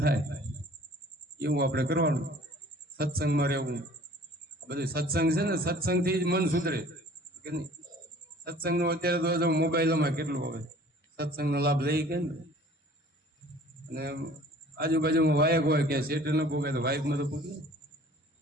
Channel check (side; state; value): both; normal; correlation 0.50